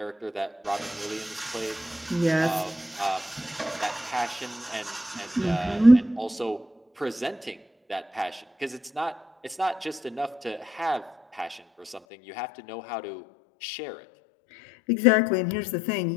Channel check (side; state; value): right; drops out; at 12.0 s